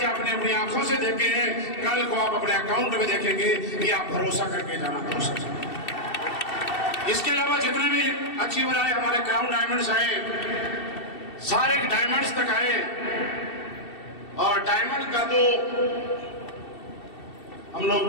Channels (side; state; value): right; late; 2.7 ms